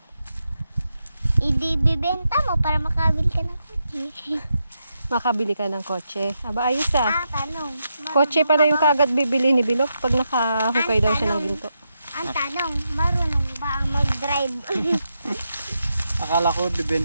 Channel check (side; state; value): both; inverted; correlation -0.85